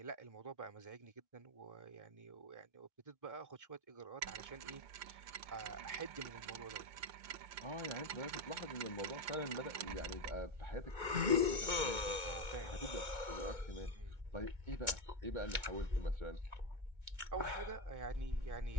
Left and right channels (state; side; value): late; left; 2.2 ms